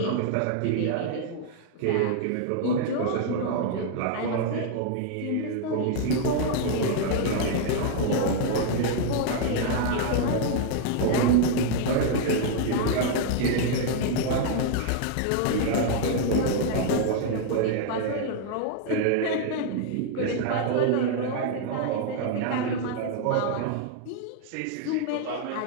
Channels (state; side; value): different; both; correlation 0.00